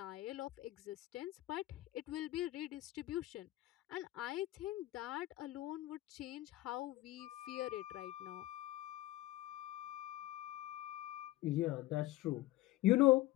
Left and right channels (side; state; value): right; quieter; 16.9 dB